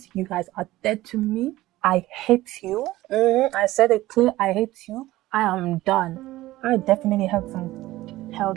you guys are dead to me. I hate you. I said it clear, I hate you. I am done. I definitely held some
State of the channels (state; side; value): quieter; left; 16.9 dB